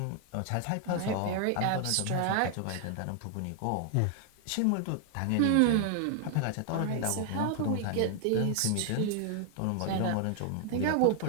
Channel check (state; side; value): different; both; correlation 0.00